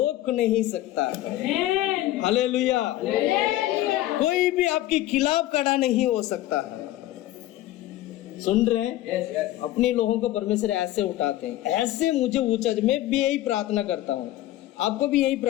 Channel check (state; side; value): quieter; right; 14.9 dB